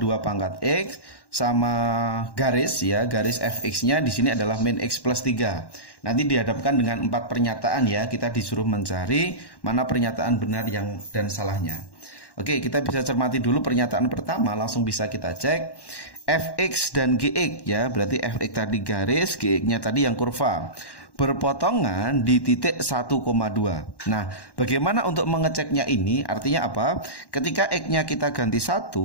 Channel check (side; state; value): right; late; 1.1 ms